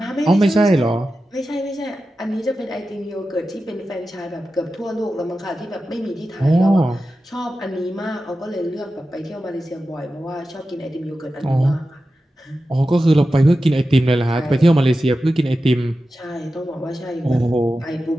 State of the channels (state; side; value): normal; both; correlation 0.93